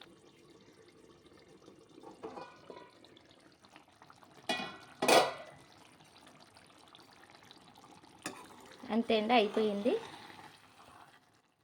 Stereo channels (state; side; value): identical; both; correlation 1.00